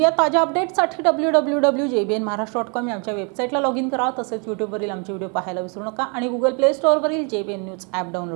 ताज्या अपडेटसाठी www.jbnmaharashtra.com या आमच्या वेबसाईटला लॉग इन करा. तसेच यूट्यूबवरील आमचे व्हिडिओ पाहायला विसरू नका आणि गुगल प्ले स्टोअरवरील JBN न्यूज ॲप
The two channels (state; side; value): quieter; left; 35.4 dB